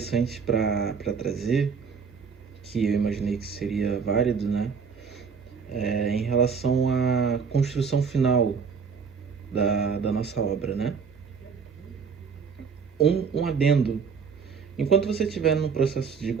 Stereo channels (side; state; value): left; quieter; 5.9 dB